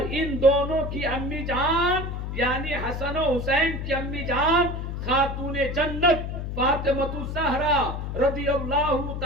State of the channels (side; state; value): left; noise; hum, 5 dB below the sound